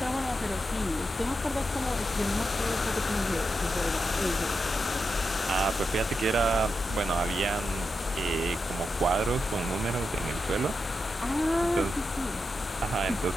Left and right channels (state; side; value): normal; both; correlation 0.87